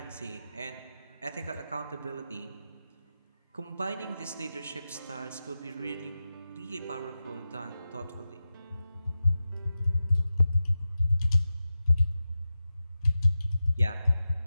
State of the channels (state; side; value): inverted; both; correlation -0.93